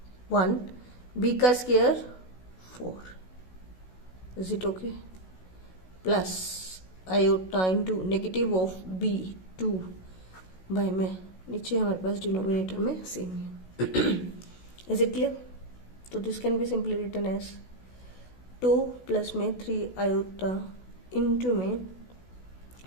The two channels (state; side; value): late; right; 16 ms